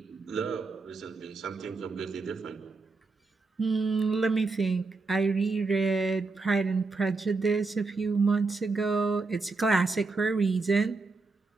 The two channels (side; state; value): left; quieter; 3.9 dB